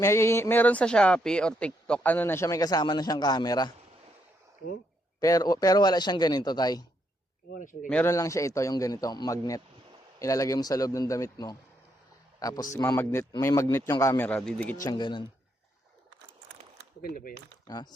Meron sa Shopee or TikTok, ano na siya, may kasama na siyang camera. Oh? Pero wala siyang ganito, tay. Wala siyang ganyan. Meron lang siya ito, yung ganito, magnet. Ilalagay mo sa loob ng damit mo. Tapos may magnet yung camera, didikit siyang ganun. Maganda ba yan?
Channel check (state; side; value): normal; both; correlation 0.77